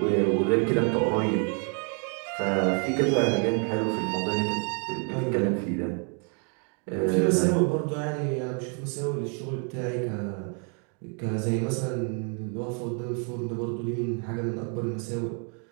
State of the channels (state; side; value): quieter; left; 40.0 dB